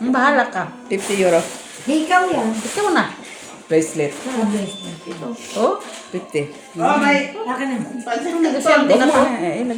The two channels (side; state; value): both; identical; correlation 1.00